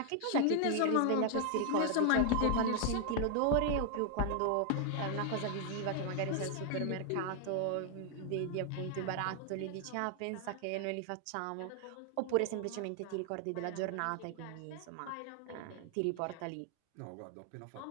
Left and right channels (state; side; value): different; both; correlation 0.00